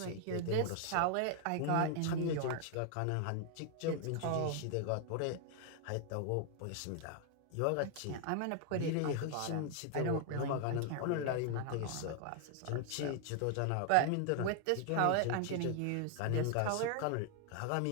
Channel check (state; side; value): different; both; correlation 0.00